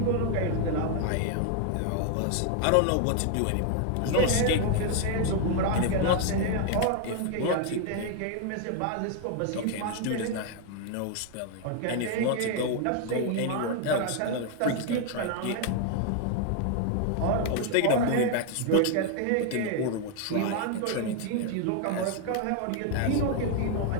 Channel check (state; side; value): different; both; correlation 0.00